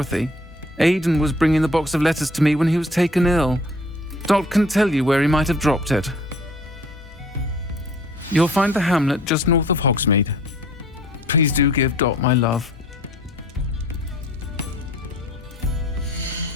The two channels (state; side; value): normal; both; correlation 0.54